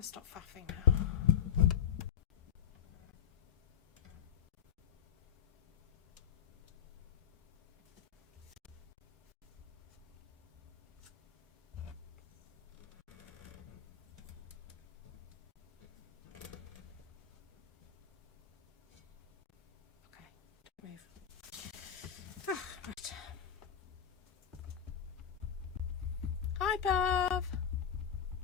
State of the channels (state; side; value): quieter; right; 8.8 dB